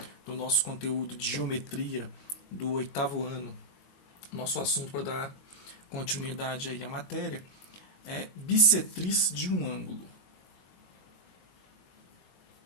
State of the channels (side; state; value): right; late; 22 ms